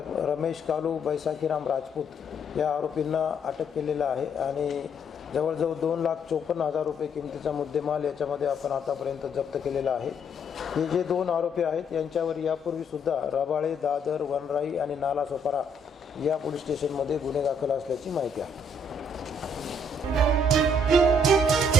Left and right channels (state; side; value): normal; both; correlation 0.69